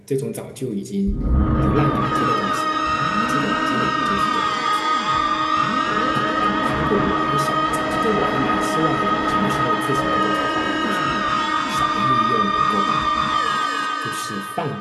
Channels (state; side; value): identical; both; correlation 1.00